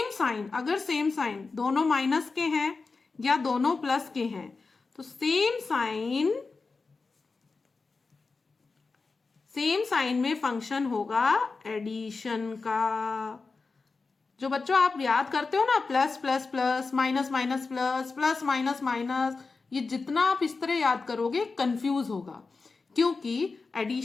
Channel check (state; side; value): quieter; right; 4.2 dB